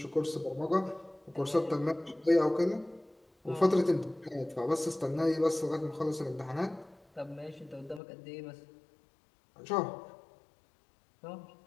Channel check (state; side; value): drops out; right; at 8.0 s